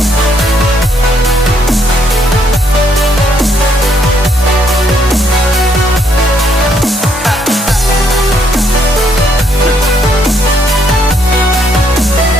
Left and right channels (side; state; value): both; normal; correlation 0.71